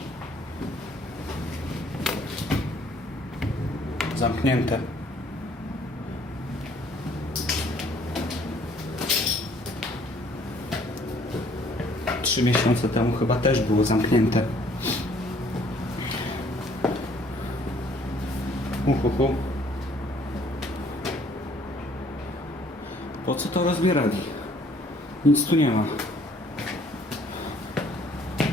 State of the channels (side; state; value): both; normal; correlation 0.60